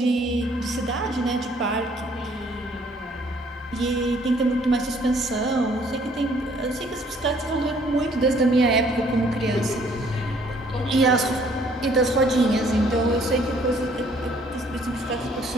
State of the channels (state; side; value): normal; both; correlation 0.61